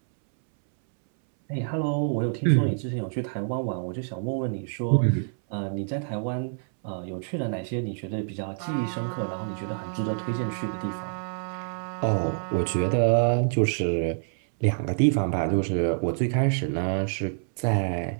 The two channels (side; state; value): left; silent; 60 dB below the other